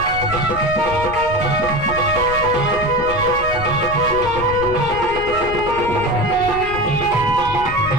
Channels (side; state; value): left; noise; rumble, 10 dB below the sound